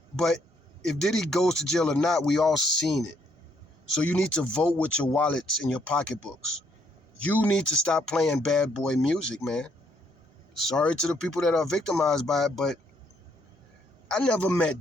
But if Diddy goes to jail or not, we all seen it. So you need to vote with your wallets and your pocketbooks. You need to stop playing bad boy music, man. Sorry to the people that are victimized by it, but I never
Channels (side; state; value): both; normal; correlation 0.70